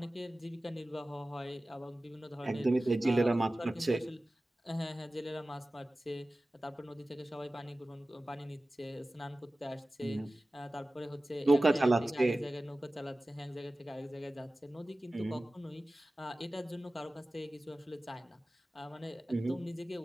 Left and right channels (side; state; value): both; normal; correlation 0.96